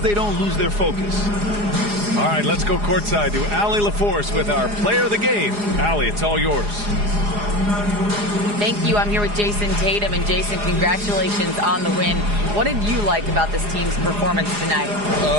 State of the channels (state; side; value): late; left; 4.8 ms